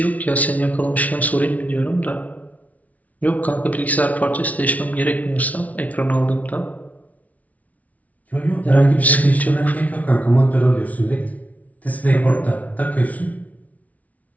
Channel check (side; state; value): right; late; 0.071 ms